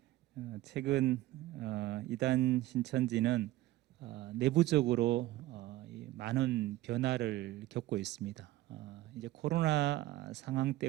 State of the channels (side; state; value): left; quieter; 16.4 dB